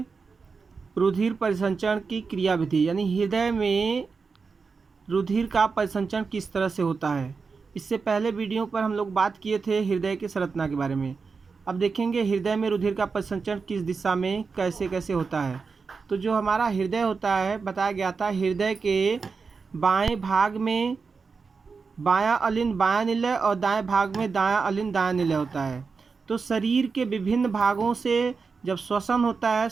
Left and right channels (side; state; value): left; quieter; 4.9 dB